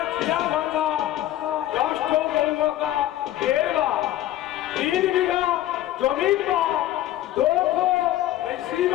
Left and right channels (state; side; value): quieter; right; 13.7 dB